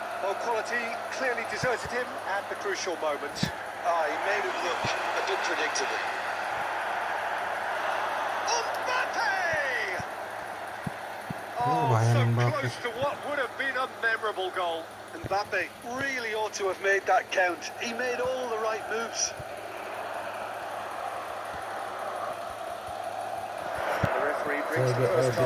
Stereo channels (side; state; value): both; identical; correlation 1.00